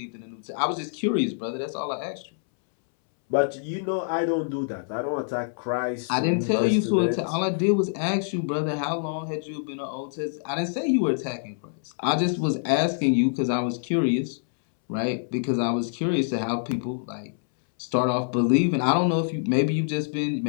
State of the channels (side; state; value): right; silent; 61 dB below the other